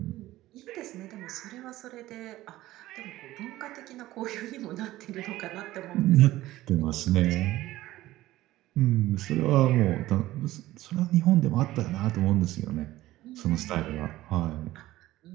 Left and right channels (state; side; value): quieter; left; 16.2 dB